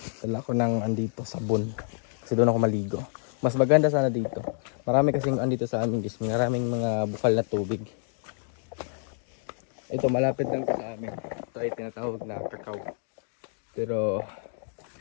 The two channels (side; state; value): right; silent; 59 dB below the other